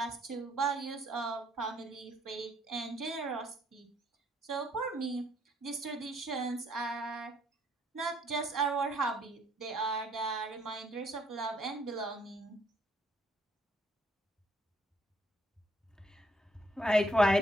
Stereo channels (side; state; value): both; normal; correlation 0.67